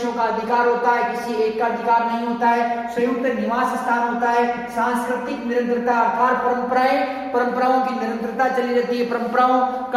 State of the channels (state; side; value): identical; both; correlation 1.00